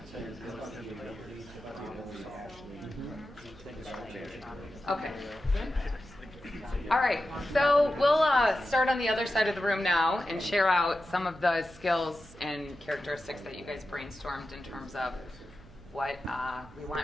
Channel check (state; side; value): noise; right; hum, 21 dB below the sound